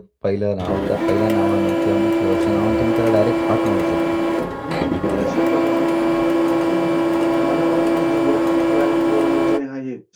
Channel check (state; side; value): identical; both; correlation 1.00